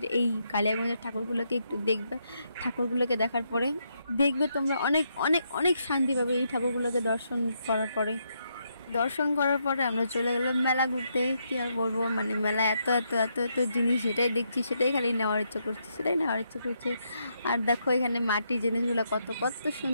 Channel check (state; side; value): inverted; both; correlation -0.79